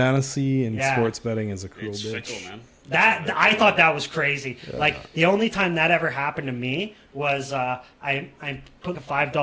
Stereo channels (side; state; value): both; identical; correlation 1.00